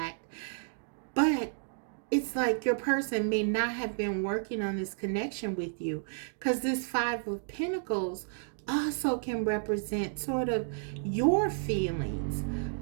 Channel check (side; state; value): left; silent; digital silence